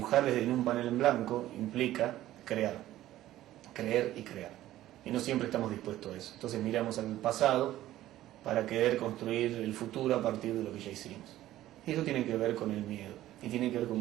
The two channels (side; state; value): left; quieter; 14.3 dB